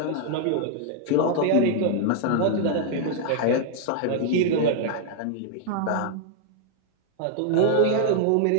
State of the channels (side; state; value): both; different; correlation 0.00